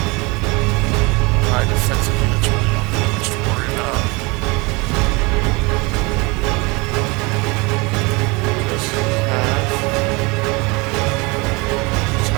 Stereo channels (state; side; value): quieter; left; 26.4 dB